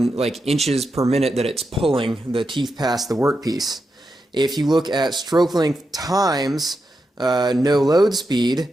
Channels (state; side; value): normal; both; correlation 0.87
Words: inches per minute that it's pulling the teeth past the workpiece. If you look at stroke length times no load